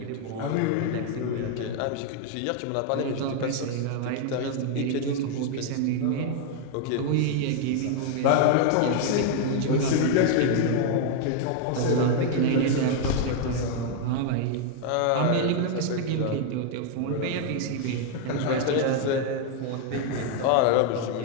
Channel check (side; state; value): both; different; correlation 0.00